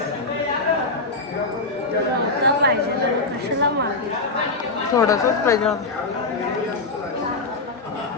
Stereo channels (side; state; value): right; quieter; 3.5 dB